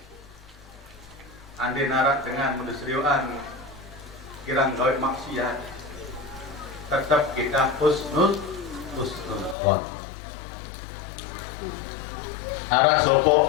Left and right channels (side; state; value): right; drops out; at 9.6 s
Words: Ande narak dengan mendesriuan kirang gawe maksiat, tetap kita husnul dhon. Arah sopo